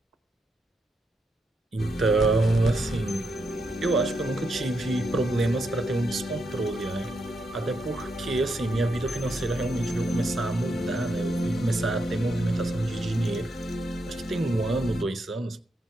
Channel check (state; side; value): normal; both; correlation 0.81